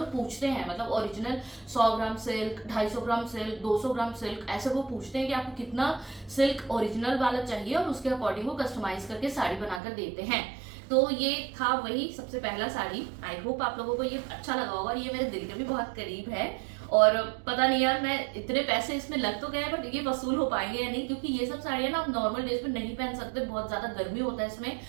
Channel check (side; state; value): left; drops out; at 9.8 s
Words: पूछते हैं मतलब ओरिजिनल 100 ग्राम सिल्क, 250 ग्राम सिल्क, 200 ग्राम सिल्क, ऐसे वो पूछते हैं कि आपको कितना सिल्क ओरिजिनल वाला चाहिए और उसके अकॉर्डिंग वो कस्टमाइज करके साड़ी बनाकर देते हैं। तो ये था वही सबसे पहला साड़ी। आई होप आप लोगों को ये अच्छा लगा होगा। ये मेरे दिल के भी बहुत करीब है और पता नहीं यार मैं इतने पैसे इसमें लग तो गए बट ये वसूल हो पाएंगे या नहीं, क्योंकि ये सब साड़ियाँ ना आप नॉर्मल डेज में नहीं पहन सकते, बहुत ज्यादा गर्मी होता है इसमें।